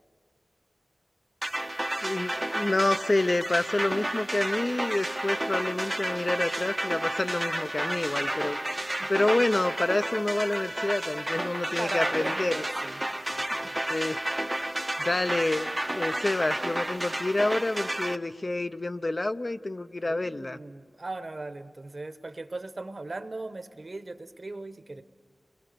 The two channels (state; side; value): normal; both; correlation 0.98